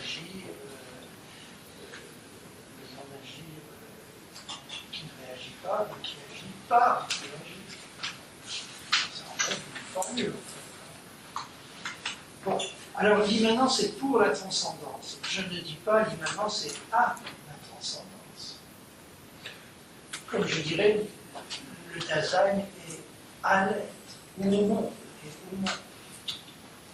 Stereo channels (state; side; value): identical; both; correlation 1.00